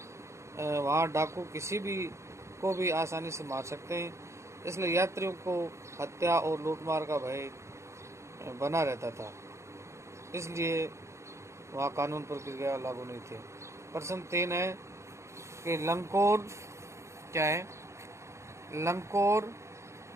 वहाँ डाकू किसी भी को भी आसानी से मार सकते हैं, इसलिए यात्रियों को हत्या और लूटमार का भय बना रहता था। इसलिए वहाँ कानून प्रक्रिया लागू नहीं थी। प्रश्न 3 है कि लंकोर क्या है? लंकोर,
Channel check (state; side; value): late; left; 0.14 ms